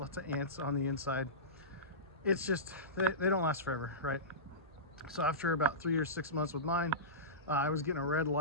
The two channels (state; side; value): normal; both; correlation -0.19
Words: of ants on the inside, it's just, they don't last forever, right? So after about 3 or 6 months with mine, I was getting a red